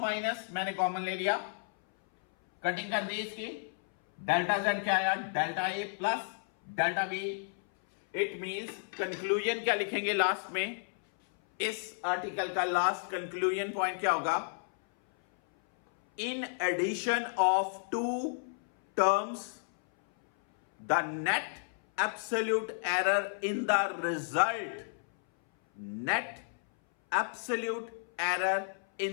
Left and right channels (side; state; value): right; silent; 56 dB below the other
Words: मैंने कॉमन ले लिया, कटिंग कर दी इसकी। डेल्टा जेड क्या आया? Delta A plus delta B. It means conclusion क्या लिखेंगे लास्ट में? इस आर्टिकल का लास्ट कंक्लूजन पॉइंट क्या होगा? In addition of two terms, the net absolute error in the result, net absolute error